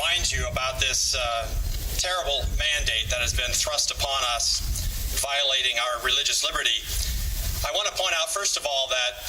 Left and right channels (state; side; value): identical; both; correlation 1.00